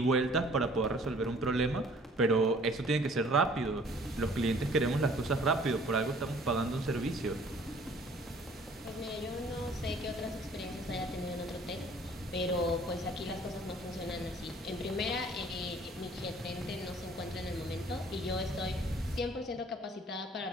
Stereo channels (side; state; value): both; normal; correlation 0.55